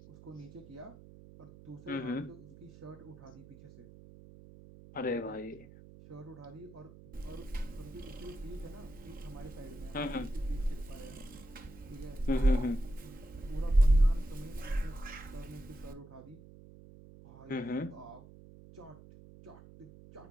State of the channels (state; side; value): noise; right; hum, 19 dB below the sound